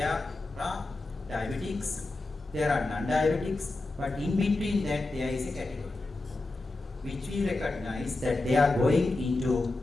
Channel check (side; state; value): right; quieter; 3.1 dB